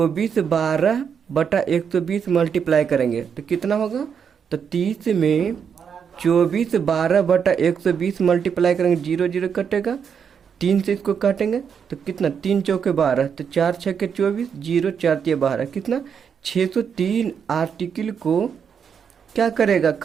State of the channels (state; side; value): quieter; left; 7.1 dB